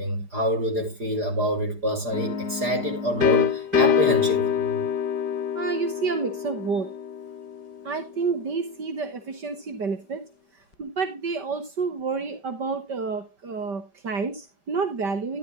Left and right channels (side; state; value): left; late; 4.8 ms